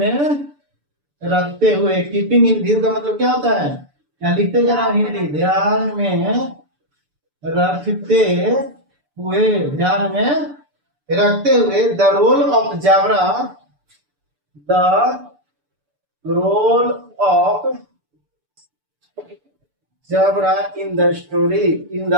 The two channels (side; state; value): left; late; 6.9 ms